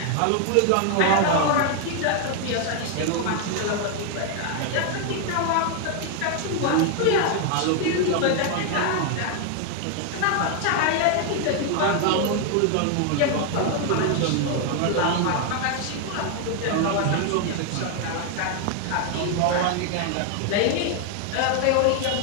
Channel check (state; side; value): different; both; correlation 0.00